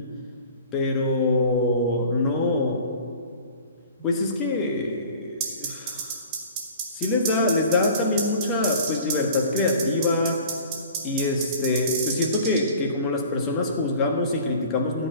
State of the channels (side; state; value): both; inverted; correlation -0.44